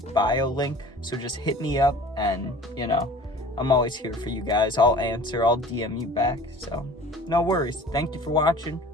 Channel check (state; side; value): normal; both; correlation 0.44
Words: bio link. So just hit me up, and I'm always here for you guys. I'll answer, I'll DM you back. So no worries. Thank you for watching.